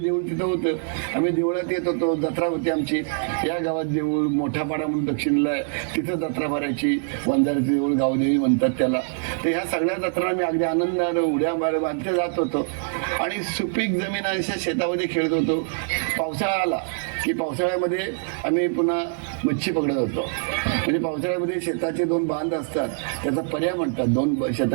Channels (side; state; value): left; silent; digital silence